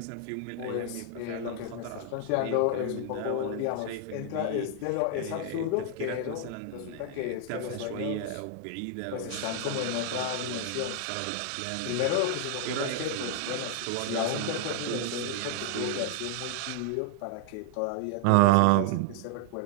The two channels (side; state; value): both; different; correlation 0.00